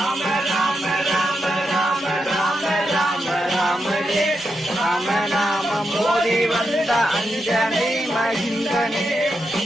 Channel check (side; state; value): both; normal; correlation 0.85